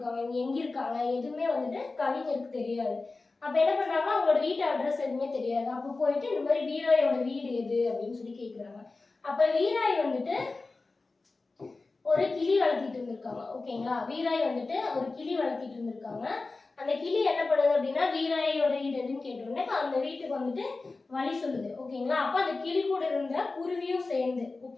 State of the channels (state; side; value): quieter; right; 3.7 dB